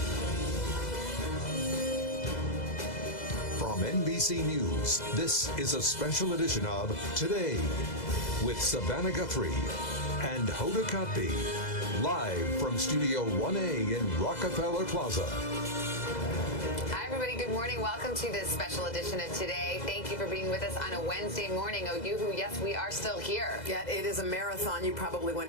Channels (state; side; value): late; right; 2.0 ms